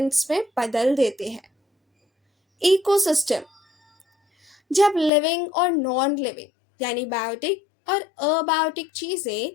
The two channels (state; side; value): drops out; right; at 5.1 s